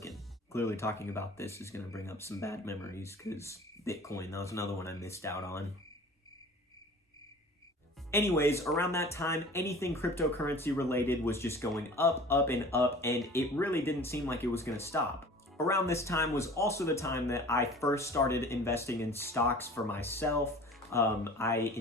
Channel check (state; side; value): normal; both; correlation 0.44